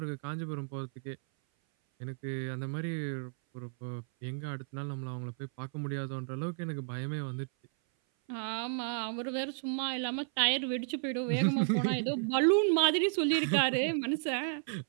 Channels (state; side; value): silent; left; 56 dB below the other